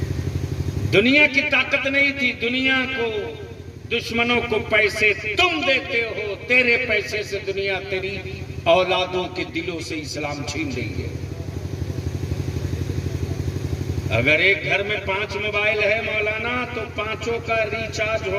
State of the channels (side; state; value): both; identical; correlation 1.00